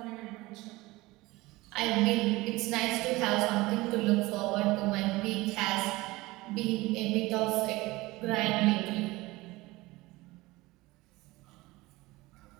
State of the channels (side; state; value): left; quieter; 20.5 dB